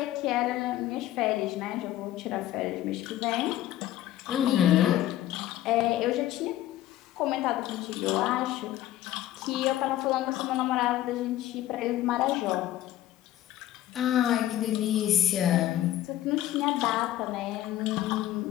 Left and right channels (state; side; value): quieter; right; 13.7 dB